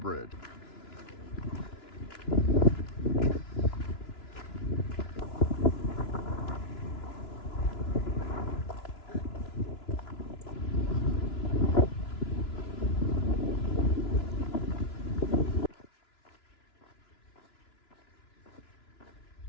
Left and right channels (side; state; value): right; late; 2.9 ms